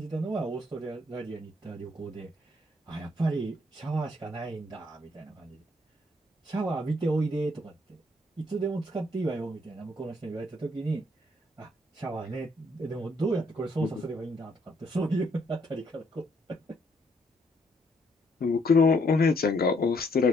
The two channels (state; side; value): normal; both; correlation 0.69